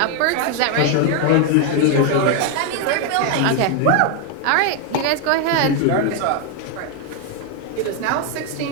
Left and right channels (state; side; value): different; both; correlation 0.01